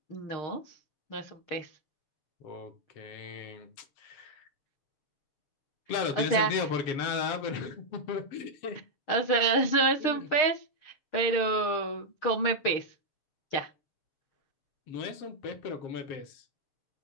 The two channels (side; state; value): right; late; 6.5 ms